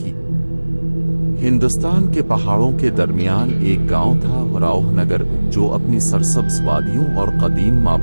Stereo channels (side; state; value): both; inverted; correlation -1.00